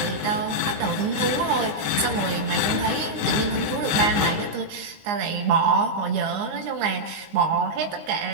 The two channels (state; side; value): late; left; 19 ms